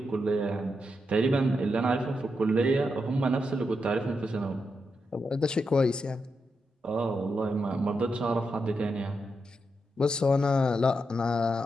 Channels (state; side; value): normal; both; correlation 0.85